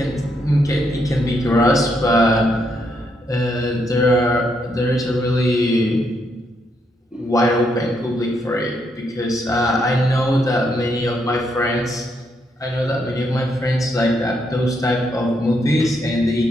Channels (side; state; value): both; normal; correlation 0.77